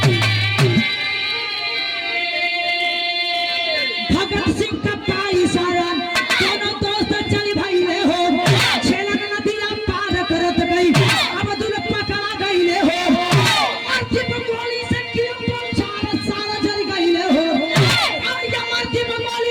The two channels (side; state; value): both; identical; correlation 1.00